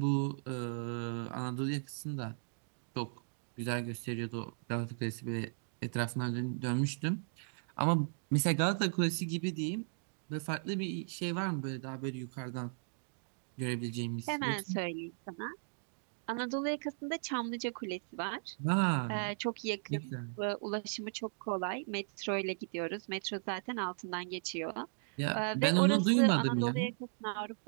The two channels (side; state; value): left; silent; digital silence